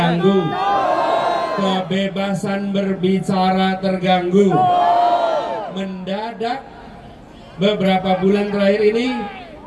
Kebebasan berbicara terganggu. Mendadak beberapa bulan terakhir ini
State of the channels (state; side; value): identical; both; correlation 1.00